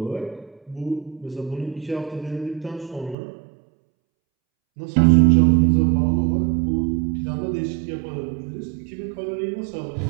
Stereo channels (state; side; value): drops out; left; at 3.2 s